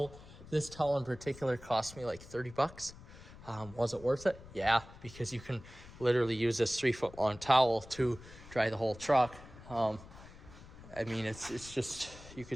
This towel in particular cost me like $30. Was it worth it? Yeah, because you can literally use this 3-foot long towel to dry the whole truck. It's just, you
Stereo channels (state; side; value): noise; left; rumble, 18 dB below the sound